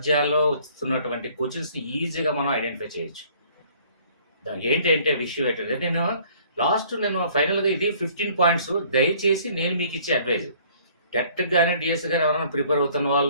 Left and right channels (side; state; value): both; inverted; correlation -0.57